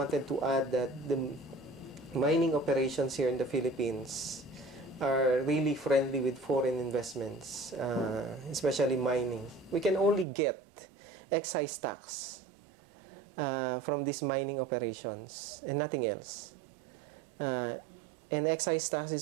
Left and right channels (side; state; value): left; drops out; at 10.2 s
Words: to add that the mining operations here in the Philippines are really friendly with foreign investments, especially mining. We can only get excise tax from these mining operations and nothing else. And excise tax